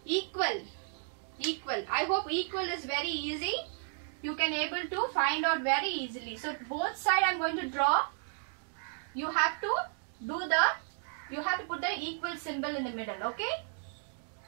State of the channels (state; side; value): silent; left; 56 dB below the other